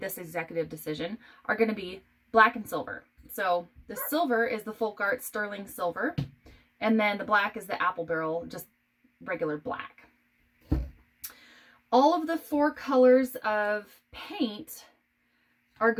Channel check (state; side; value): identical; both; correlation 1.00